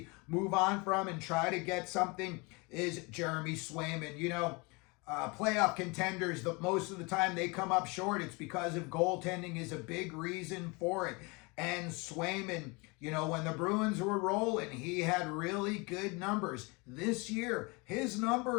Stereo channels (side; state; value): right; quieter; 28.0 dB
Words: move on from and try to get something is Jeremy Swayman. Playoff contenders, most of the time they come up short. It's because of goaltending is a big reason for it. And Swayman, when the Bruins were rolling, he had really good numbers. This year, his